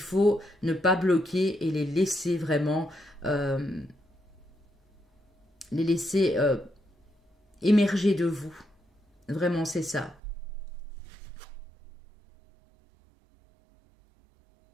ne pas bloquer et les laisser vraiment, émerger de vous. Vraiment, c'est ça.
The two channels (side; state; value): left; drops out; at 10.2 s